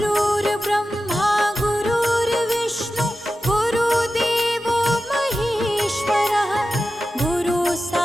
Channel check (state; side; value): normal; both; correlation 0.93